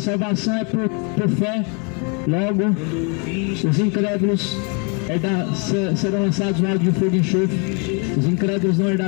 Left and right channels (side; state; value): right; quieter; 34.9 dB